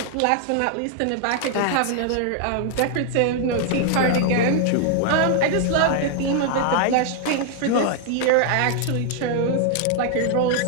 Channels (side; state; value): both; different; correlation 0.00